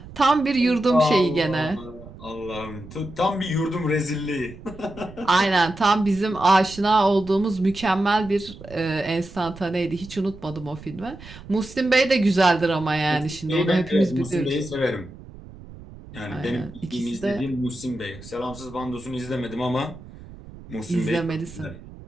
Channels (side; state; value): right; noise; rumble, 17 dB below the sound